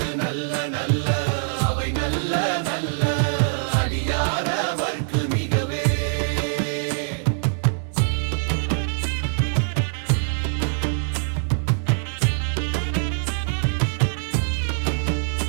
நல்ல நல்ல அவை நல்ல நல்ல அடியாரவர்க்கு மிகவே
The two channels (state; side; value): silent; left; digital silence